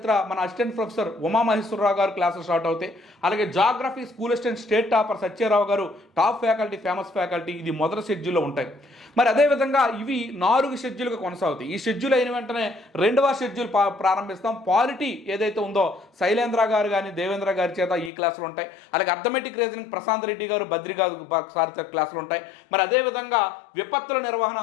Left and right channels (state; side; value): drops out; right; at 18.1 s